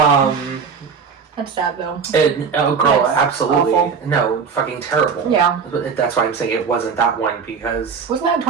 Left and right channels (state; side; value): quieter; left; 6.0 dB